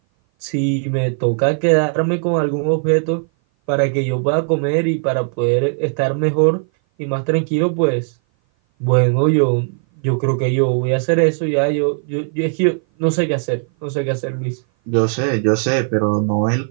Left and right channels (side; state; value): left; silent; 57 dB below the other